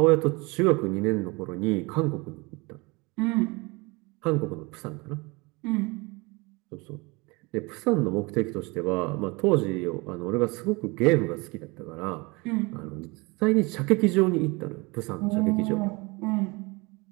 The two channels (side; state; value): left; quieter; 26.1 dB